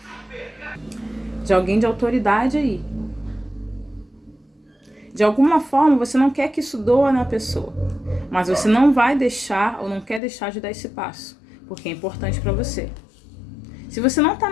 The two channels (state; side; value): drops out; right; at 10.2 s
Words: De alguém de autoridade aí. De alguma forma, você não quer que isso doa na pessoa. Mas você não vai deixar, ou não quer deixar de dar esse passo. Porque é importante para você. Se você não tá